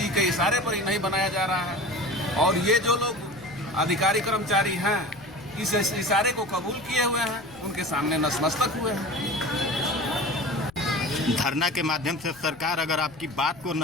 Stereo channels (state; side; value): noise; left; rumble, 24 dB below the sound